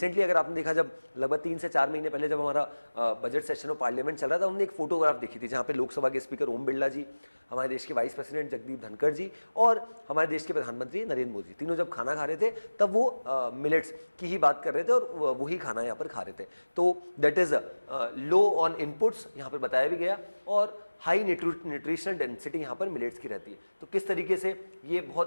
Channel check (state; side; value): inverted; both; correlation -1.00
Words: अगर आपने देखा, जब लगभग 3 से 4 महीने पहले जब हमारा बजट सेशन ऑफ पार्लियामेंट चल रहा था, हमने एक फोटोग्राफ देखी थी जहाँ पे लोकसभा के स्पीकर ओम बिरला जी, हमारे देश के वाइस प्रेसिडेंट जगदीप धनखड़ जी और हमारे देश के प्रधानमंत्री नरेंद्र मोदी, तीनों जब खाना खा रहे थे तब वो मिलेट्स की ही बात कर रहे थे और वही खाना यहाँ पर खा रहे थे। तो that is low on inputs यहाँ पर बताया भी गया और हाई न्यूट्रिशनल डेंसिटी यहाँ पर मिलेट्स की रहती है। तो किस तरीके से ये